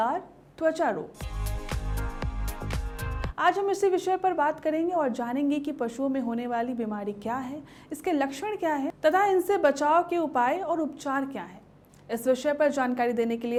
त्वचा रोग। आज हम इसी विषय पर बात करेंगे और जानेंगे कि पशुओं में होने वाली बीमारी क्या है, इसके लक्षण क्या है तथा इनसे बचाव के उपाय और उपचार क्या है। इस विषय पर जानकारी देने के लिए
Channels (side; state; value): both; identical; correlation 1.00